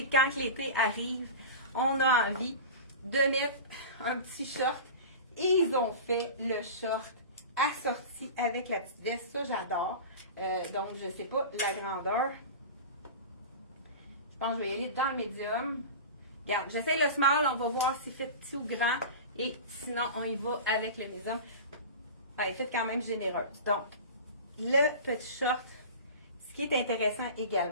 quand l'été arrive, on a envie de mettre un petit short. Et ils ont fait le short assorti avec la petite veste. Ça, j'adore. Donc, je ne sais pas la grandeur. Je pense que je vais y aller dans le médium. Regarde, j'essaie le small. On va voir s'il fait petit ou grand. Et sinon, on y va avec le médium. Elle est faite quand même généreuse. Donc, le petit short, ce qui est intéressant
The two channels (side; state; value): both; inverted; correlation -0.32